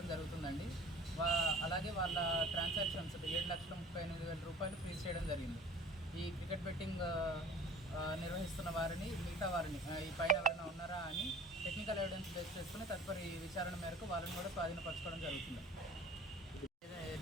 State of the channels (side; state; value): both; normal; correlation 0.45